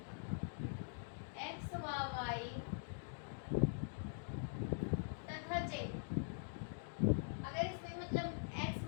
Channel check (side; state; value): right; silent; digital silence